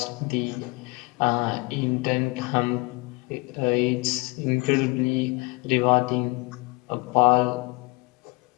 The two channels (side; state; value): right; quieter; 27.1 dB